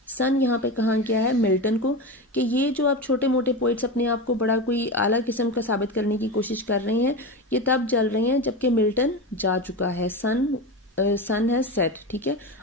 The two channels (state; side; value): normal; both; correlation 0.21